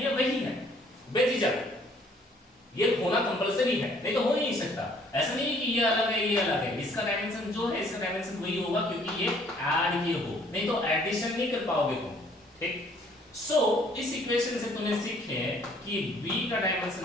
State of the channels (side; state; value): both; normal; correlation 0.60